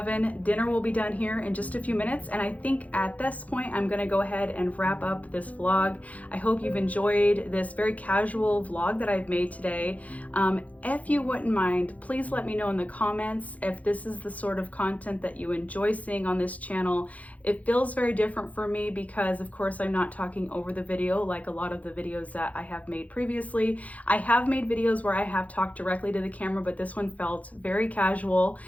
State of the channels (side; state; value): right; late; 0.070 ms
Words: Dinner will be done here in just a few minutes, and I think at this point I'm gonna go ahead and wrap up this vlog. I hope you've enjoyed this very casual vlog that I've made today. If you wouldn't mind, please let me know in the comments if this is the sort of content that you enjoy seeing on this channel. It feels very different for me because, of course, I'm not talking over the video like a lot of the videos that I have made previously. I have made videos where I have talked directly to the camera, but this one felt very casual.